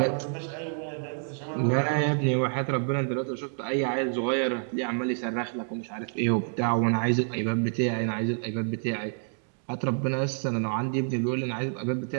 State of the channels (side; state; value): left; silent; digital silence